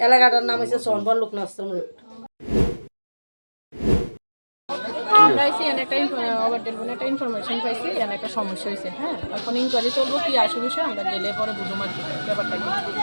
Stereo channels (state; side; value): inverted; both; correlation -1.00